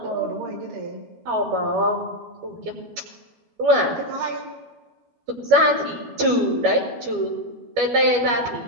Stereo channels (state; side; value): late; left; 12 ms